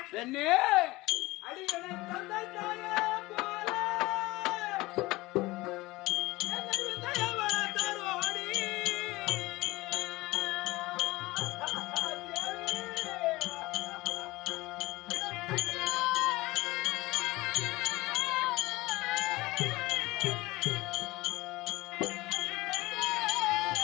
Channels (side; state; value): right; quieter; 20.4 dB